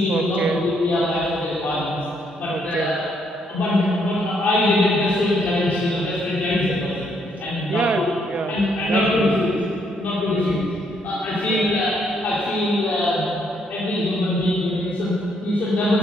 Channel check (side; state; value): both; normal; correlation 0.72